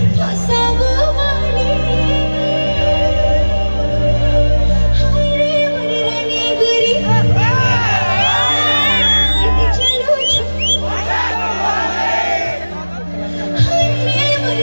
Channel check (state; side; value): inverted; both; correlation -1.00